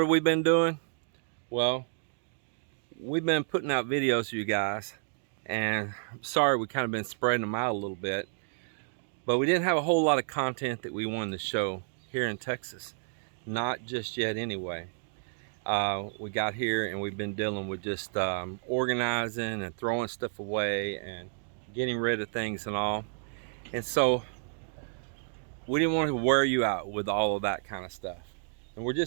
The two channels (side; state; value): left; silent; digital silence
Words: have we been doing? Well, we've been putting out videos for you guys, and I'm sorry we kind of been spreading them out a little bit, but we didn't have a whole lot of content that we wanted to show here in Texas. Not just yet anyway. We got here and we've been dealing with just organizing and throwing stuff away and getting rid of things and all. And so we didn't want to wear you out with all of that kind of stuff. And we're